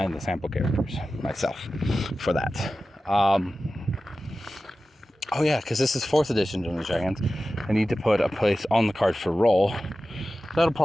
the sample characters myself for that. Oh yeah, because this is 4th edition Dungeons & Dragons. I need to put a place on the card for role. That'll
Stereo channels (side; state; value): both; normal; correlation 0.94